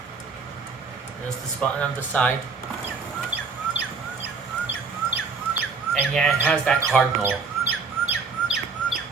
There's this button on the side. And yeah, it has that cardinal.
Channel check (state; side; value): quieter; left; 4.9 dB